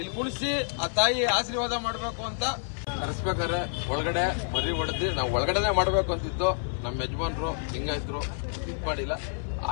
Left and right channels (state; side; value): silent; right; 59 dB below the other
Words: ಕುಣಿಸಿ ಆ ತಾಯಿ ಆಶೀರ್ವಾದ ಮಾಡಬೇಕು ಅಂತ ಕರೆಸ್ಬೇಕಾದ್ರೆ ಒಳಗಡೆ ಮರಿ ಹೊಡೆದಿ ನಾವು ಒಳಗಡೆನೆ ಮಾಡಬೇಕು ಅಂತಿತ್ತು. ನಮ್ಮ ಯಜಮಾನ್ರು ಲಿಂಗಾಯತರು ಇದ್ ಮಾಡಿಲ್ಲ,